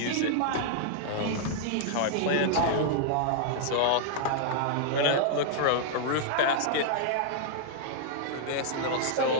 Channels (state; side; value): different; both; correlation -0.01